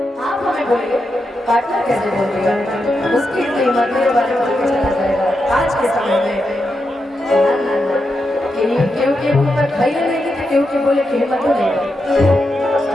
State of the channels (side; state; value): both; normal; correlation 0.86